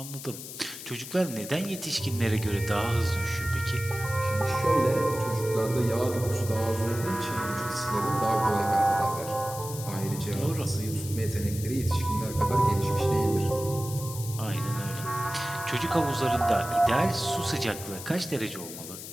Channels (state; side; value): noise; left; hiss, 11 dB below the sound